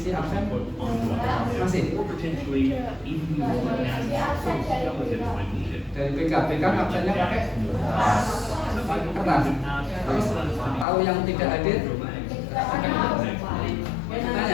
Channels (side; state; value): right; drops out; at 10.9 s